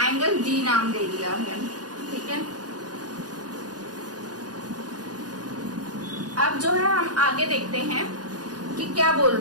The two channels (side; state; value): left; late; 0.69 ms